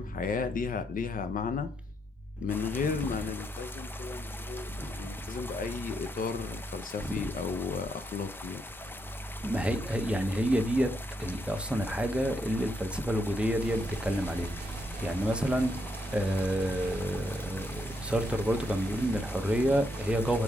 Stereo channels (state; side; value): normal; both; correlation 0.78